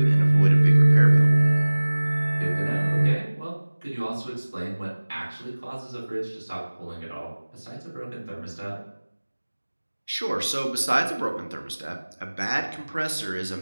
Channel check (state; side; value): inverted; both; correlation -1.00